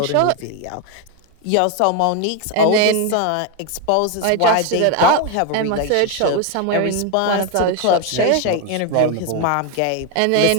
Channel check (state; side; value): different; both; correlation 0.01